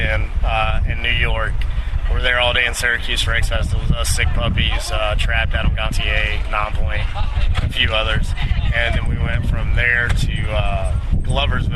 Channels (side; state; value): both; identical; correlation 1.00